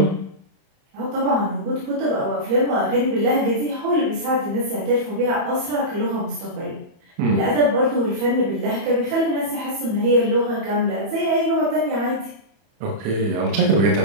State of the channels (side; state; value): left; late; 30 ms